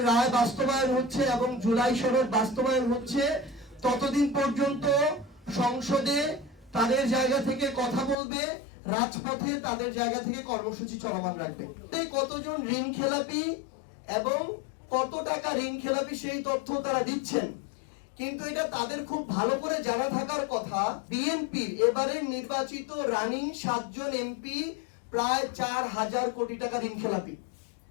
রায় বাস্তবায়ন হচ্ছে এবং জুলাই সনদ বাস্তবায়ন হচ্ছে ততদিন পর্যন্ত সংসদে তাদের জায়গা থেকে কথা বলবে, রাজপথে তাদের জায়গা থেকে কর্মসূচি চলমান রাখবে। কতজন ঋণ খেলাপি এবং কত টাকা ঋণ খেলাপি সেই তথ্য তারা দিচ্ছেন, কিন্তু এটা তাদের খুব ভালো করে জানা থাকার কথা। বিএনপির এবারের নির্বাচিত রানিং 7 জন এমপি প্রায় 4000 কোটি টাকা ঋণ খেলাপি,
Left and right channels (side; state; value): right; drops out; at 8.2 s